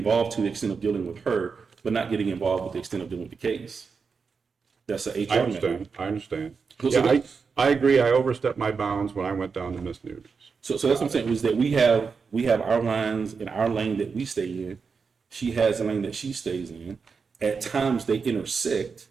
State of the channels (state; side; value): quieter; left; 5.3 dB